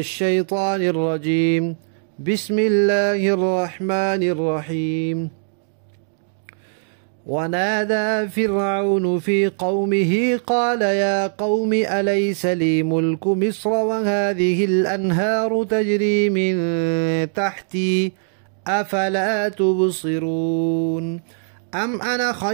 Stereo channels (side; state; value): left; silent; digital silence